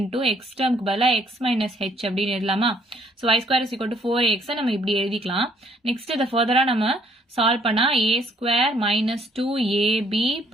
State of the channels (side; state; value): both; normal; correlation 0.65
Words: x டேர்முக்கு பதிலா x minus h அப்படின்னு எழுதலாமா? So y square is equal to 4ax நம்ம இப்படி எழுதிக்கலாம். நெக்ஸ்ட் இத ஃபர்தரா நம்ம சால்வ் பண்ணா a square minus 2ab